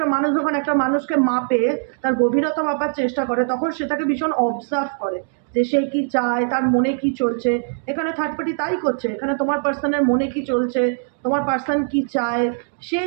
মানুষ যখন একটা মানুষকে মাপে, তার গভীরতা মাপার চেষ্টা করে, তখন সে তাকে ভীষণ অবজার্ভ করে যে সে কি চায়, তার মনে কি চলছে। এখানে থার্ড পার্টি তাই করছে, এখানে তোমার পার্সনের মনে কি চলছে, তোমার পার্সন কি চায়, সে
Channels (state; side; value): silent; left; digital silence